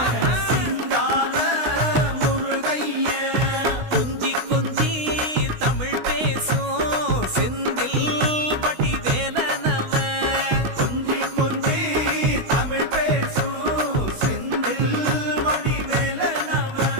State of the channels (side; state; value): left; late; 16 ms